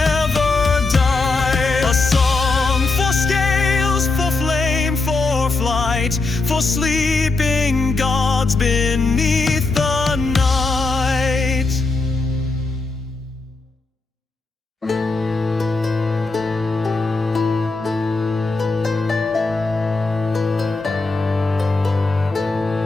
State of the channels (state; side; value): quieter; right; 3.7 dB